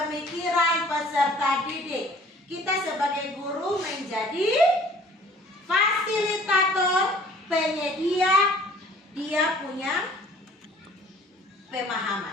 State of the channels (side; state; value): both; normal; correlation 0.53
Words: peserta didik. Kita sebagai guru menjadi fasilitator, penyedia, dia punya